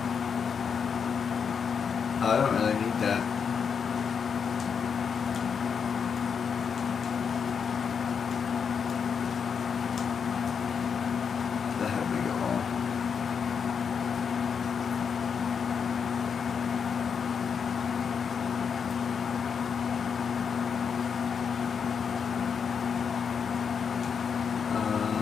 I don't really need that. That had make it all.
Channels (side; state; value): right; quieter; 6.6 dB